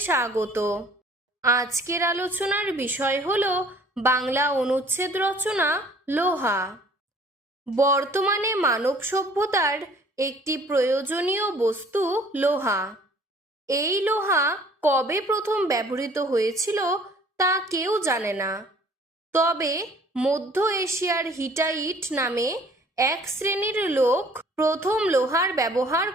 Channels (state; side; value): normal; both; correlation 0.54